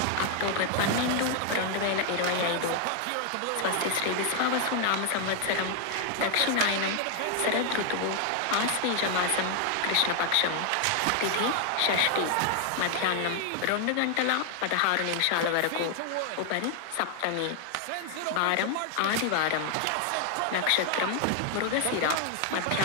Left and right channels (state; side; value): different; both; correlation 0.00